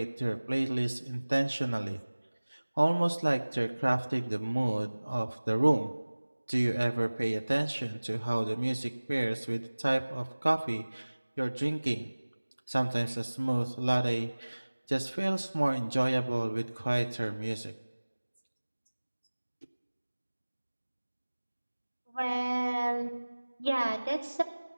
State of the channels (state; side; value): inverted; both; correlation -1.00